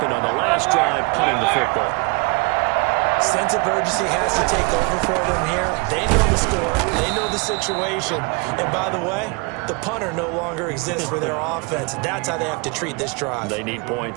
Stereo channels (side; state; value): left; quieter; 31.2 dB